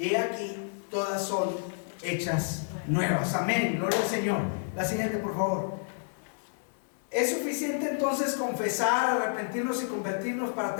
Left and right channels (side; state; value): right; silent; digital silence